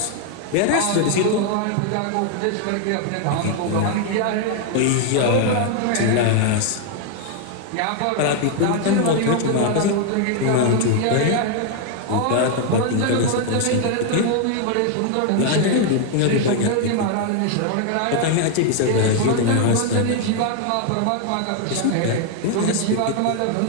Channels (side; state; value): both; different; correlation 0.00